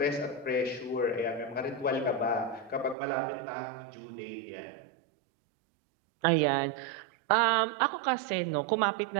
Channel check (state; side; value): drops out; left; at 3.0 s